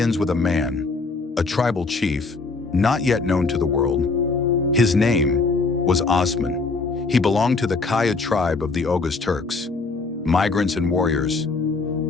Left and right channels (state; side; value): quieter; right; 4.0 dB